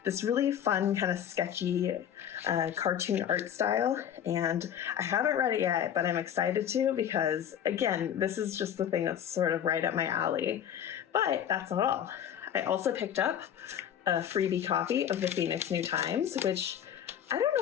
this really fun, kind of sketchy cartoon art style. And I haven't read it yet, but I'm excited to because, again, this is just the thing that's sort of right up my alley. But that's not all. I also picked up a freebie copy of the Phoenix New Times, which I don't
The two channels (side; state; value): right; quieter; 9.5 dB